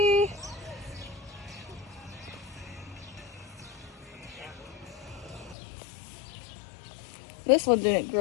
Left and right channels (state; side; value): drops out; right; at 5.6 s